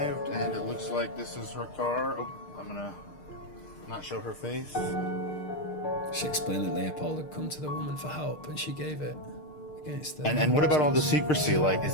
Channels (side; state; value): right; late; 6.6 ms